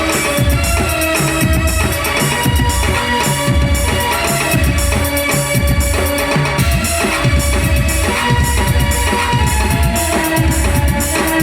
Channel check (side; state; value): both; identical; correlation 1.00